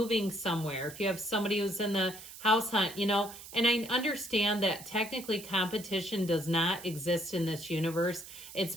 somewhere. If you have somebody who's in the house hunt, and I understand that technically competition does not exist in this universe. It's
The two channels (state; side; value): noise; right; hiss, 15 dB below the sound